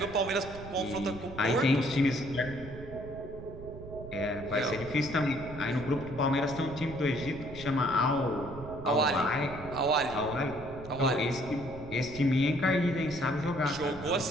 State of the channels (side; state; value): right; noise; rumble, 13 dB below the sound